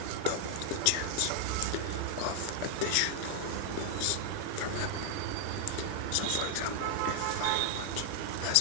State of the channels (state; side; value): different; both; correlation 0.00